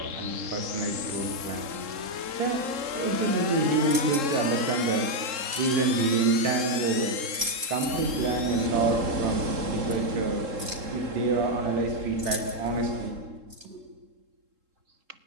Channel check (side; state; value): left; late; 3.7 ms